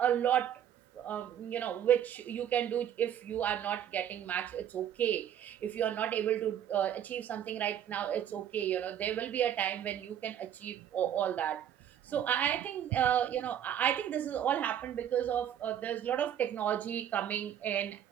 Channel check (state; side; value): quieter; left; 10.0 dB